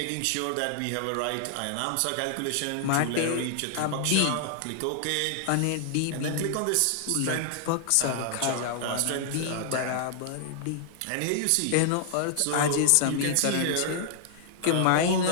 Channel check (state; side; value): different; both; correlation 0.00